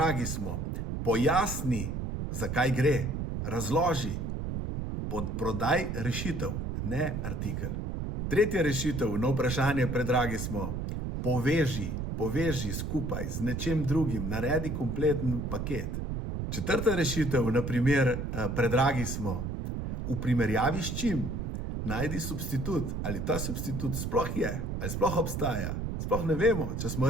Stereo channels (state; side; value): noise; right; rumble, 3 dB below the sound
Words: smo: pojasni, zakaj gre, razloži. Podprodaj rešitev, ne artikel. Tretja rešitev na vprašanje predragi smo: poveži skupaj z nečim drugim, naredi kompleten paket. Četrta rešitev, na primer predragi smo: v primerjavi s čim, najdi substitut, ali ta substitut sploh je, ali sploh obstaja. Sploh ne vemo, če smo